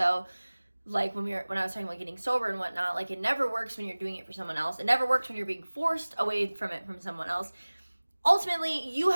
like when I was talking about getting sober and whatnot. Like, it never works when you're doing it for someone else. It never works when you're being forced away from it from someone else. Ultimately, you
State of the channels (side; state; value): both; inverted; correlation -1.00